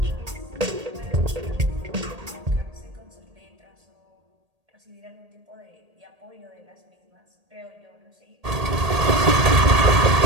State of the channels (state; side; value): late; left; 1.8 ms